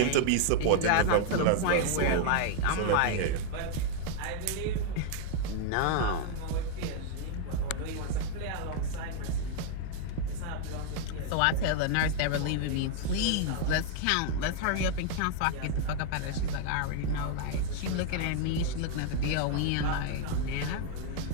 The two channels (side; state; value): both; different; correlation 0.00